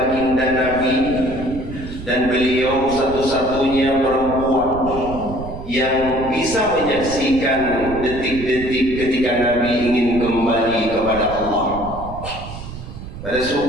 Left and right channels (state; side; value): noise; right; rumble, 11 dB below the sound